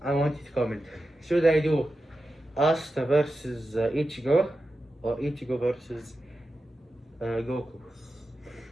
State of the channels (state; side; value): normal; both; correlation 0.91